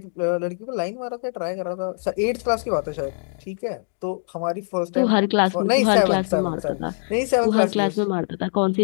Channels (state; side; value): silent; right; digital silence